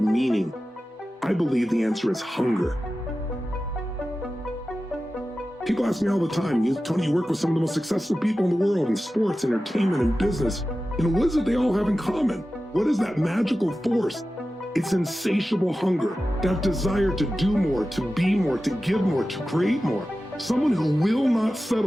meaning. I believe the answer is hunger. People ask me all the time, Tony, you work with some of the most successful people in the world in sports, entertainment, and business. What is it they all have in common? What is that magical force? It's insatiable hunger, that desire to do more, to be more, to give more, to create more. Someone who will not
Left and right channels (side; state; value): both; normal; correlation 0.94